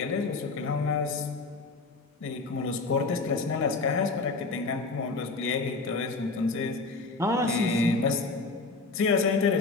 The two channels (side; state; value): right; quieter; 3.8 dB